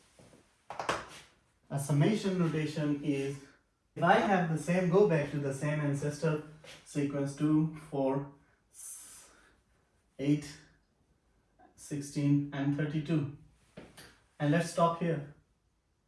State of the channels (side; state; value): both; identical; correlation 1.00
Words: A summation notation is, if I have the same, go back to the same ancestor sequence 2, 4, 8, 16 and 32. And let's stop here.